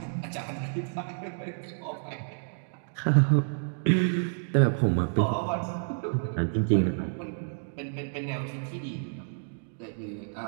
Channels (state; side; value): silent; left; digital silence